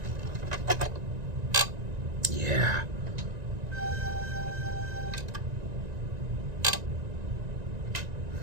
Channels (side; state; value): left; late; 1.9 ms